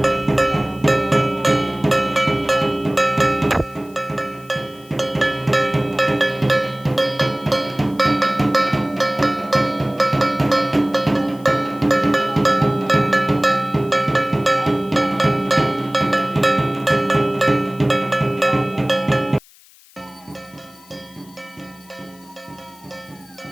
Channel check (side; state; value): left; noise; hiss, 26 dB below the sound